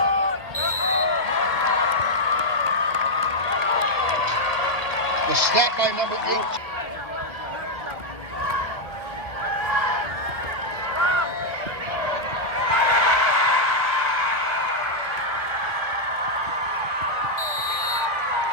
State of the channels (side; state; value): left; late; 2.3 ms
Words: The snap by number 8.